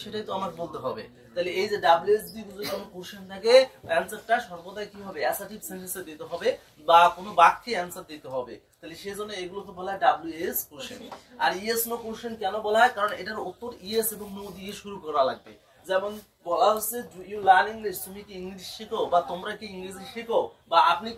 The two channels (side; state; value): both; identical; correlation 1.00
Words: সেটাই তো আমাকে বলতে হবে। তাহলে এই যে ডাব্লিউএস দিয়ে যদি কোনো কোশ্চেন থাকে, অ্যানসারটা সর্বদাই কি হবে? অ্যাসার্টিভ সেন্টেন্সে দিতে হবে বা কোনো বাক্যে অ্যানসার দিতে হবে। তাহলে সেজন্য এগুলোকে বলা হয় ডাব্লিউএস কোশ্চেন। আর ইয়েস নো কোশ্চেন কেন বলা হয়? কারণ এটার উত্তর ইয়েস এবং নো দিয়ে শুরু করা লাগবে। যেমন বলা হচ্ছে ডু ইউ লার্ন ইংলিশ? তুমি কি ইংলিশ শেখো বা তোমরা কি ইংরেজি শেখো বা আপনি